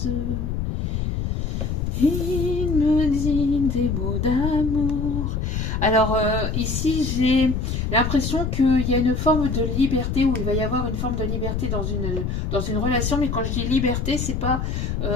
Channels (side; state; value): left; noise; rumble, 1 dB below the sound